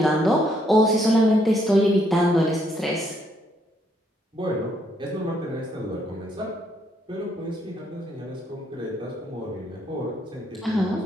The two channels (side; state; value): both; normal; correlation 0.72